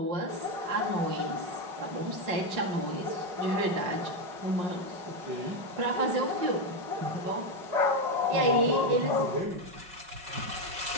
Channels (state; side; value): late; left; 5.6 ms